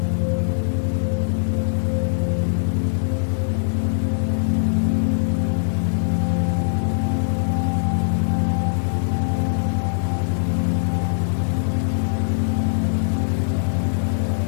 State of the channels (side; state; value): right; silent; 65 dB below the other